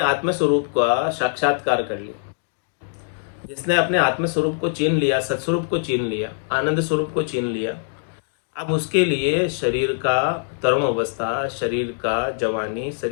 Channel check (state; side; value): silent; right; digital silence